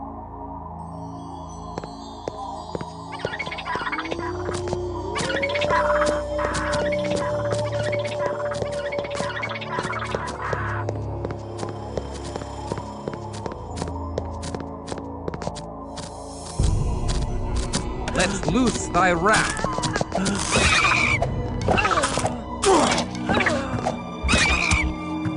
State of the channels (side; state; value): both; identical; correlation 1.00